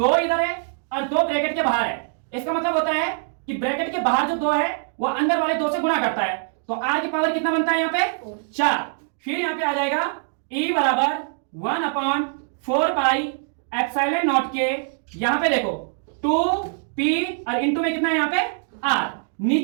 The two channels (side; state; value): left; silent; 63 dB below the other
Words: इधर है और 2 ब्रैकेट के बाहर है। इसका मतलब होता है कि ब्रैकेट के बाहर जो 2 है वो अंदर वाले 2 से गुणा करता है, तो r की पावर कितना बनता है यहाँ पे 4। फिर यहाँ पे आ जाएगा e बराबर 1/4 पाई एप्सिलॉन नॉट के, यहां पे देखो 2p और इंटू में कितना है यहाँ पे r,